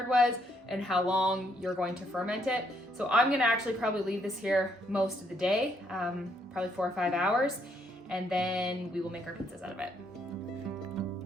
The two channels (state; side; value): normal; both; correlation 0.71